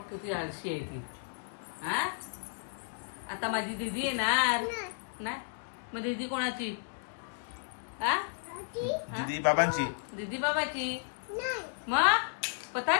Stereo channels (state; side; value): silent; right; digital silence